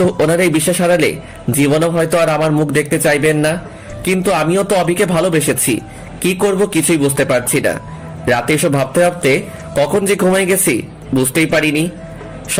ওনার এই বিশ্বাস হারালে জীবনও হয়তো আর আমার মুখ দেখতে চাইবেন না। কিন্তু আমিও তো অভিকে ভালোবেসেছি, কি করব কিছুই বুঝতে পারছি না। রাতে এসব ভাবতে ভাবতে কখন যে ঘুমাই গেছি বুঝতেই পারিনি।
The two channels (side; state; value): both; identical; correlation 1.00